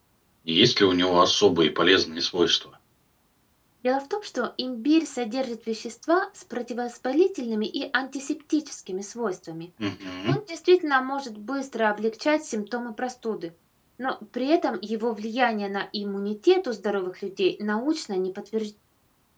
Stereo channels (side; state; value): both; identical; correlation 1.00